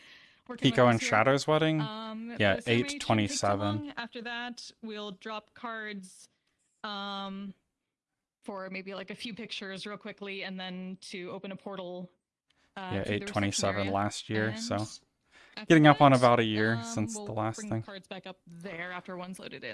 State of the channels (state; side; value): identical; both; correlation 1.00